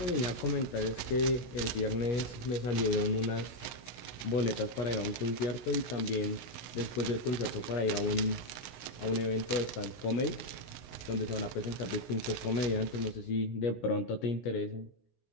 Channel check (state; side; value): late; right; 16 ms